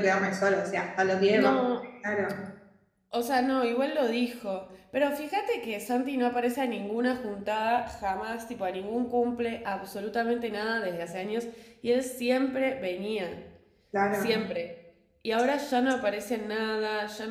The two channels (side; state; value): both; identical; correlation 1.00